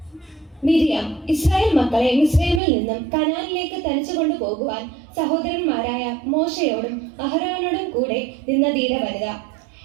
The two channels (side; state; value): left; drops out; at 2.6 s